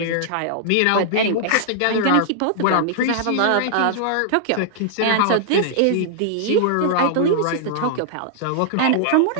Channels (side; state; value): both; different; correlation -0.01